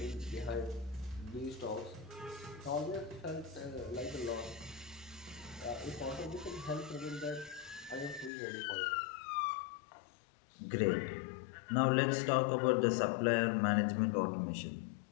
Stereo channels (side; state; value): right; drops out; at 8.3 s